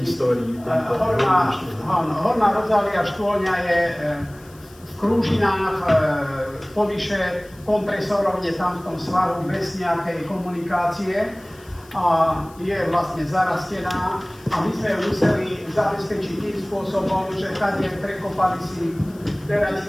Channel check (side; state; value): left; noise; hiss, 26 dB below the sound